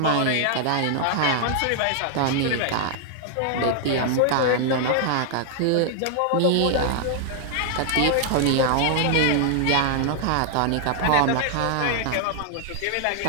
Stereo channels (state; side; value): different; both; correlation 0.00